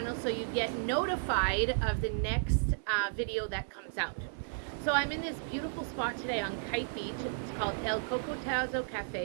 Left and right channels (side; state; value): left; silent; digital silence